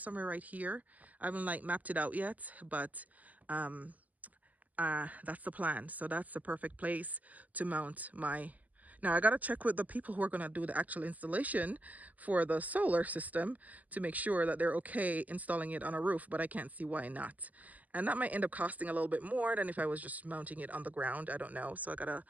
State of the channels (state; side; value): late; left; 0.078 ms